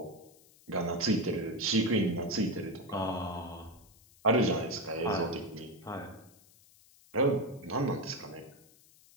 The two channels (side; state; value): left; noise; hiss, 27 dB below the sound